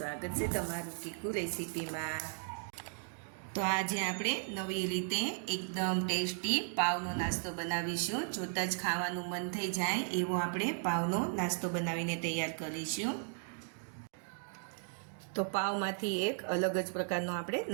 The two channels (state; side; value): silent; left; digital silence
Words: है तमारू कीकू रेसिपी में। तो आज आपणे नवी रीते एकदम टेस्टी पावनो नास्तो बनावीशुं। जोता ज खावानुं मन थई जाय एवो आपणे पावनो नास्तो बनावीने तैयार करीशुं। तो पावमांथी एक अलग ज प्रकारनो आपणे